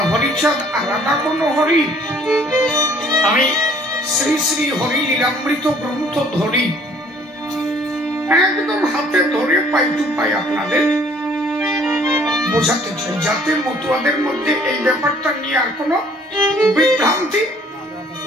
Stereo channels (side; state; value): both; normal; correlation 0.58